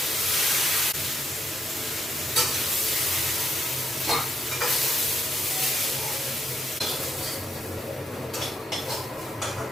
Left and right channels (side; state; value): both; normal; correlation 0.77